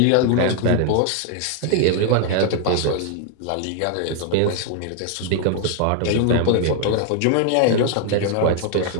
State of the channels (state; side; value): different; both; correlation 0.00